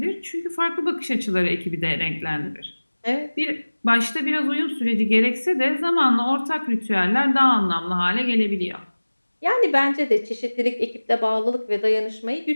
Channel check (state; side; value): inverted; both; correlation -1.00